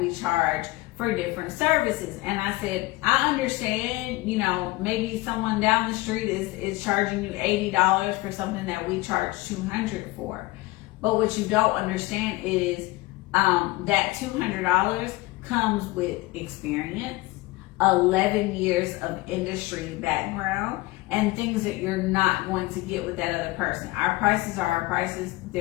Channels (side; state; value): right; quieter; 20.4 dB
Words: charge for different services. And I said, I understand, you know, maybe someone down the street is charging you $80 for something that we charge $200 for. But what you don't understand is that $200 comes with experience, 11 years of industry background, and things that you're not going to get with that other person. Our prices are our prices.